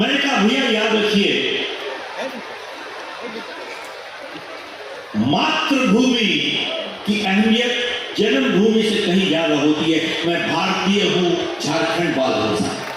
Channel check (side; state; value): both; identical; correlation 1.00